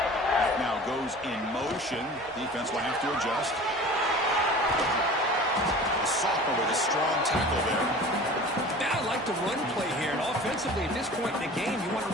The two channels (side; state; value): both; normal; correlation 0.40